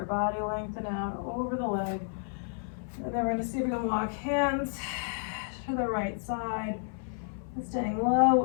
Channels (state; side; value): silent; right; 57 dB below the other